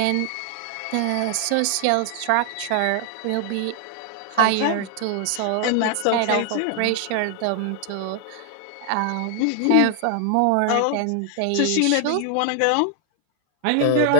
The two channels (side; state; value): both; different; correlation 0.00